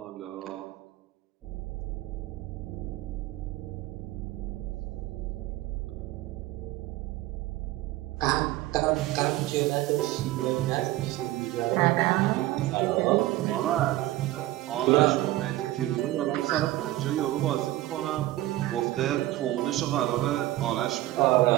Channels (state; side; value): quieter; left; 16.3 dB